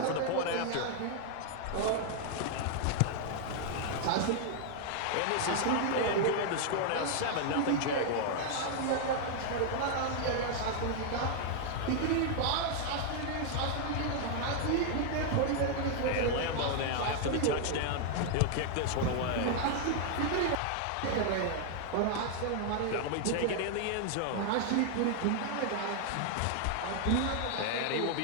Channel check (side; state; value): both; different; correlation 0.00